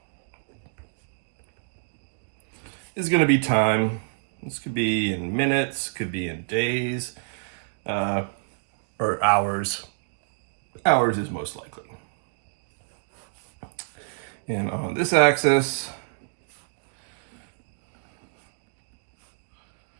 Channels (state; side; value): silent; left; digital silence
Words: is going to be time. This could be in minutes, could be in days, or hours. Hours is most likely. And on this axis